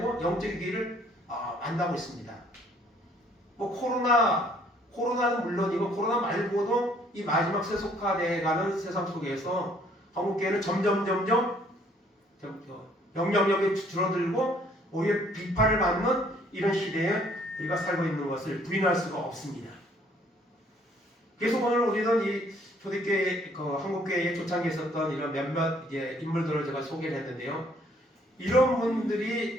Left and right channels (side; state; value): both; normal; correlation 0.62